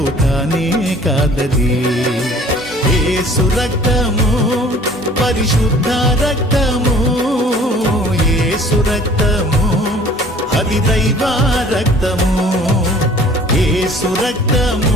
కానే కాదది. యేసు రక్తము పరిశుద్ధ రక్తము, యేసు రక్తము అది దైవ రక్తము, యేసు రక్తము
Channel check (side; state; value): both; normal; correlation 0.52